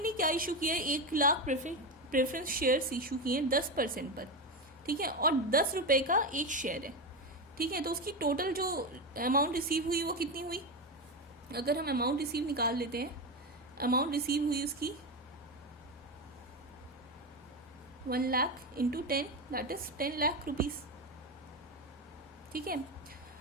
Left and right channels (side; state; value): both; normal; correlation 0.15